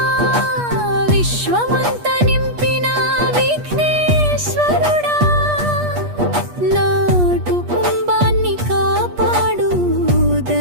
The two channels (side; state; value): left; late; 8.4 ms